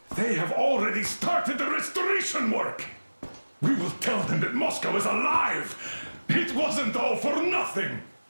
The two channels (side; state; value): both; inverted; correlation -1.00